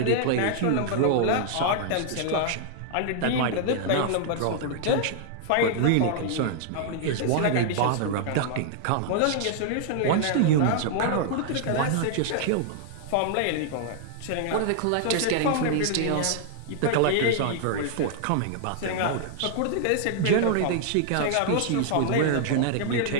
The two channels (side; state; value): both; different; correlation -0.01